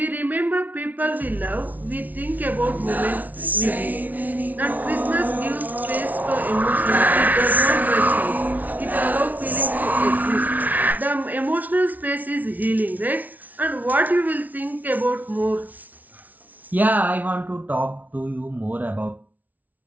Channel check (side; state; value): left; late; 0.076 ms